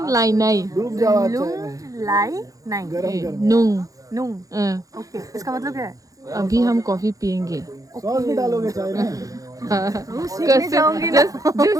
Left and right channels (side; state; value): left; late; 0.17 ms